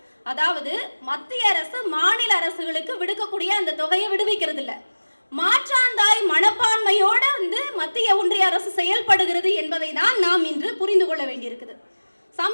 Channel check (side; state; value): both; inverted; correlation -1.00